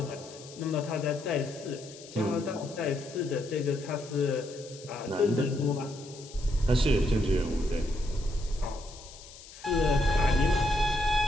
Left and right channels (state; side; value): noise; left; hiss, 18 dB below the sound